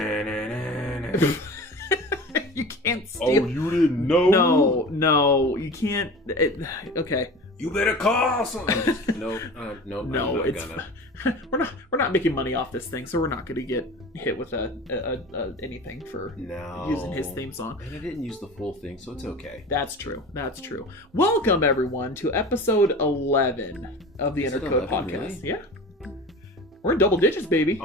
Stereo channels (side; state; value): both; normal; correlation 0.36